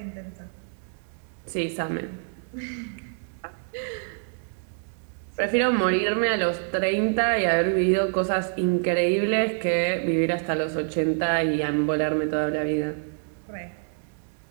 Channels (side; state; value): left; silent; 61 dB below the other